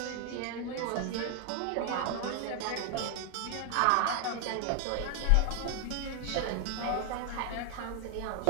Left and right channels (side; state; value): both; different; correlation 0.00